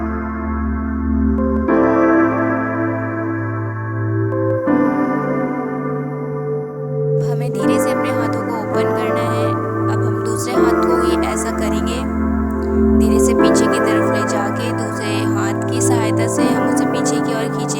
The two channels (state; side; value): identical; both; correlation 1.00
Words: हमें धीरे से अपने हाथों को ओपन करना है। अब हम दूसरे हाथ को भी ऐसा करेंगे, धीरे से पीछे की तरफ ले जाके दूसरे हाथ की सहायता से हम उसे पीछे की ओर